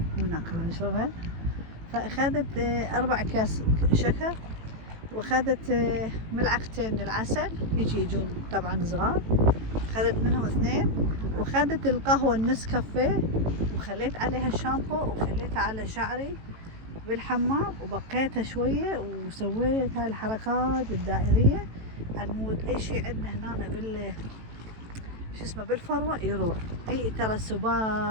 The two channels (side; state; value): left; late; 18 ms